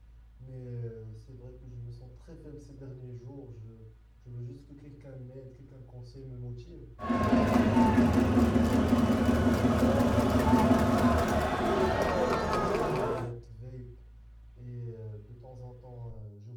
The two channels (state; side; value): identical; both; correlation 1.00